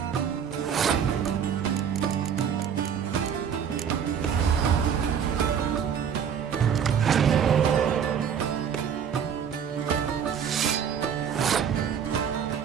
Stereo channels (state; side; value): quieter; left; 7.9 dB